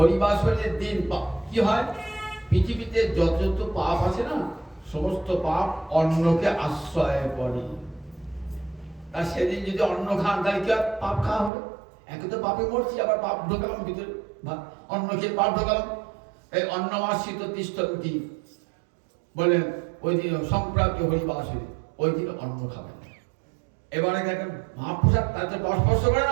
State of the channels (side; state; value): left; drops out; at 11.5 s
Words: দিন কি হয়? পৃথিবীতে যত যত পাপ আছে না, সমস্ত পাপ অন্নকে আশ্রয় করে। আর সেদিন যদি অন্ন খান তাহলে কি পাপ খাওয়া হবে? একে তো পাপে মরছি, আবার পাপ ঢোকালাম ভিতরে, অন্ন খেয়ে পাপ ঢোকালাম। এই অন্নমাশ্রিত তিষ্ঠন্তি বলেন ওই দিন সংক্রান্তি হরিবাসরী, ওই দিন অন্ন খাবেন। এবারে দেখেন মহাপ্রসাদ তাতে পাশ স্পর্শ করে